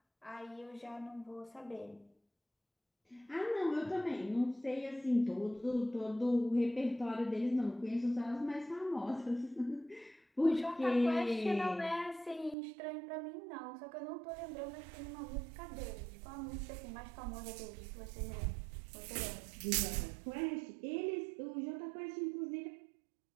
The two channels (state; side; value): drops out; left; at 12.6 s